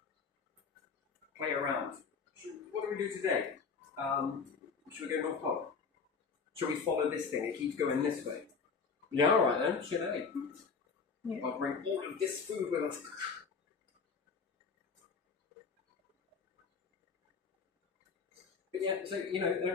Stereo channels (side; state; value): right; quieter; 5.3 dB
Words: play around. What do we do today? Should we go North Pole? Should we follow this thing? It keeps going this way. Yeah, alright then, should I? Yeah. I'll bring all of this food with us. But yeah, so, you know,